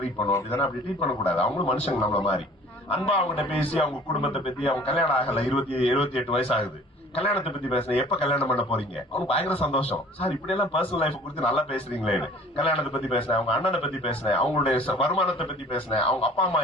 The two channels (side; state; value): both; normal; correlation 0.49